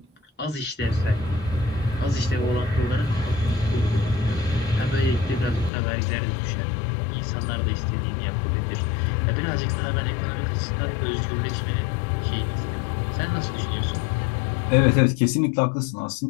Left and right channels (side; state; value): right; drops out; at 5.7 s